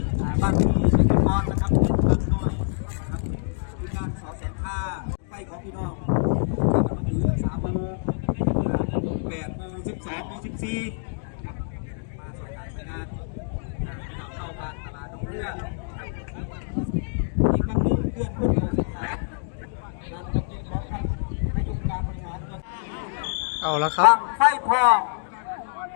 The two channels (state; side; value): silent; right; digital silence